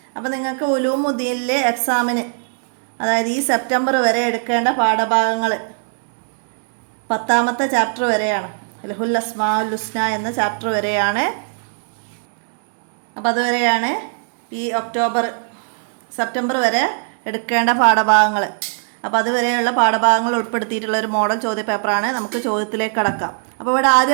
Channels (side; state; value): left; silent; 66 dB below the other